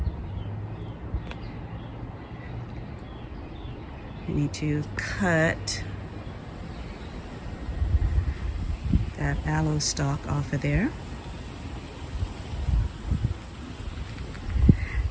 I need to cut that aloe stalk off of there.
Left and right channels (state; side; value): identical; both; correlation 1.00